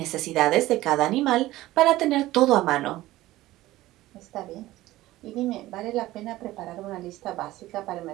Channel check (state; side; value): quieter; left; 16.8 dB